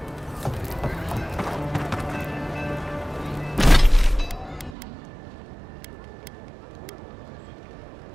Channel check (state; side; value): drops out; left; at 4.8 s